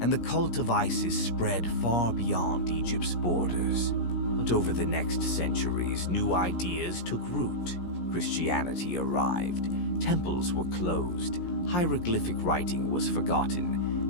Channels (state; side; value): late; right; 17 ms